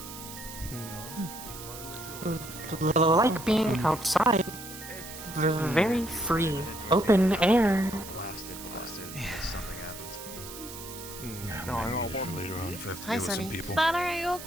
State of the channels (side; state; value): right; noise; hiss, 12 dB below the sound